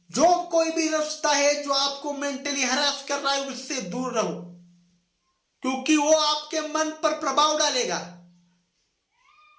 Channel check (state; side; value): identical; both; correlation 1.00